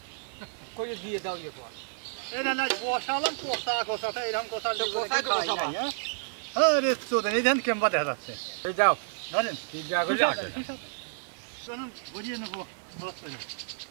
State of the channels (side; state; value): left; silent; digital silence